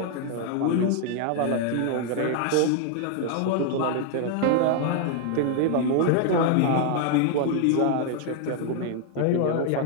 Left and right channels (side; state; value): both; different; correlation 0.00